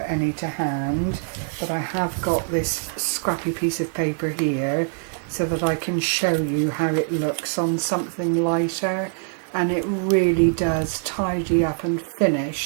to hand, but I have got this scrappy piece of paper here so that I can show you how it looks on something lighter, and it really does tidy up and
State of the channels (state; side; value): silent; left; digital silence